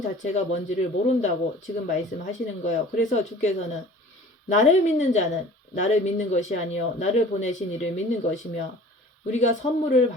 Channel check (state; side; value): normal; both; correlation 0.46